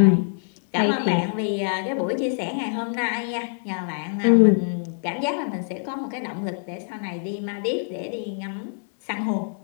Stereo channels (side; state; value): right; silent; digital silence